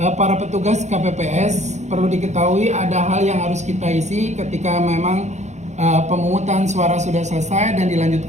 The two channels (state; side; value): late; left; 0.33 ms